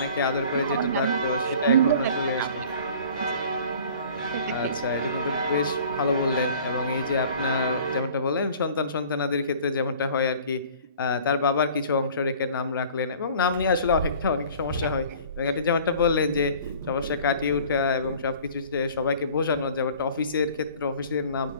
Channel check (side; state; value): both; inverted; correlation -0.48